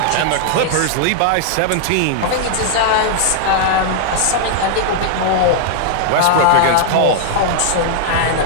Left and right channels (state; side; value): different; both; correlation -0.01